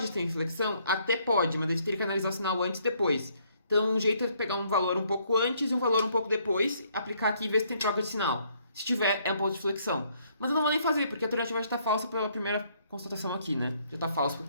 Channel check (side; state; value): both; inverted; correlation -0.68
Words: ter inflexão? Até pode, mas a gente teria que analisar o sinal antes e depois. Então, um jeito é pegar um valor um pouco antes e um valor um pouco depois, aplicar aqui e ver se tem troca de sinal. Se tiver, é um ponto de flexão. Mas eu não vou nem fazer, porque a alternativa já está falsa pela primeira constatação aqui, né? Já está falso